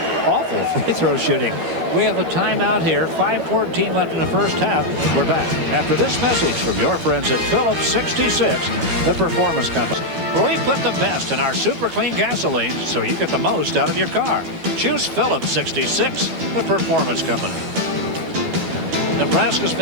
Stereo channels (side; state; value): left; late; 12 ms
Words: awful free throw shooting. We have a timeout here. 5:14 left in the first half. We're back after this message from your friends at Phillips 66, the performance company. We put the best in our super clean gasoline so you get the most out of your car. Choose Phillips 66, the performance company. Nebraska's